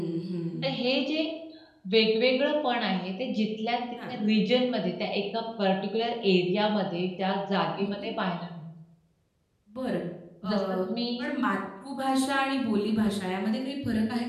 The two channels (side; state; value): both; identical; correlation 1.00